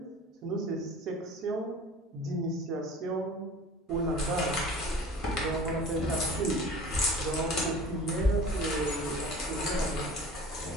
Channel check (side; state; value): both; normal; correlation 0.42